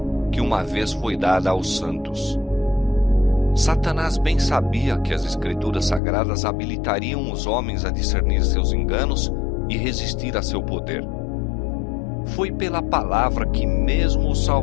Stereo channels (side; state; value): right; drops out; at 6.0 s